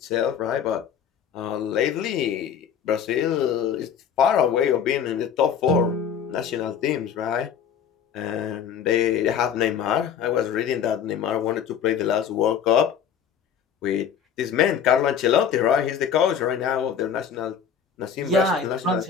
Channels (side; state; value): right; quieter; 7.9 dB